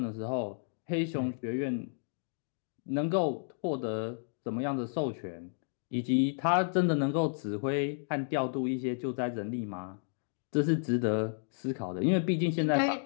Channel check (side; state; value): right; silent; digital silence